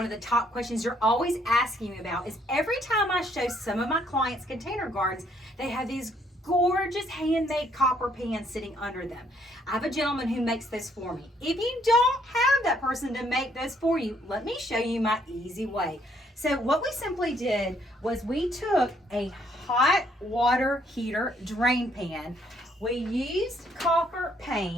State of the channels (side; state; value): both; normal; correlation 0.68